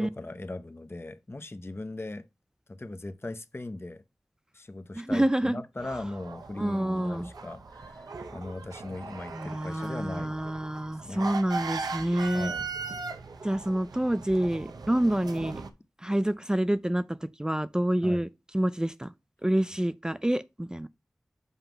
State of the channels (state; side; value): normal; both; correlation 0.96